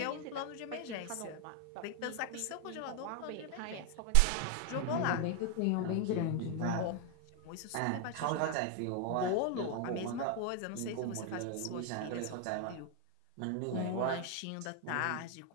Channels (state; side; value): different; both; correlation 0.01